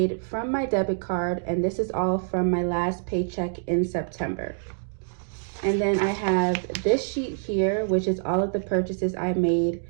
from my debit card, and this is all from my last paycheck in September. And then I have this sheet here, which is all of the purchases I made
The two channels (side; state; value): left; silent; digital silence